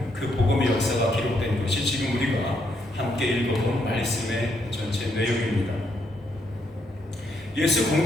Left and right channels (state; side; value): normal; both; correlation 0.75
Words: 그 복음의 역사가 기록된 것이 지금 우리가 함께 읽어본 말씀의 전체 내용입니다. 예수